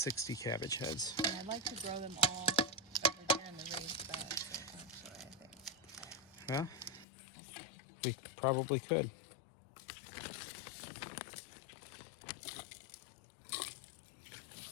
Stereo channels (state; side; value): drops out; right; at 7.1 s